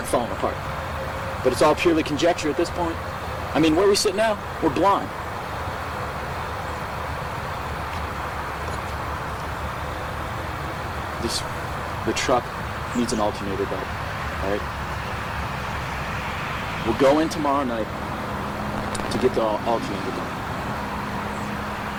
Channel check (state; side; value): identical; both; correlation 1.00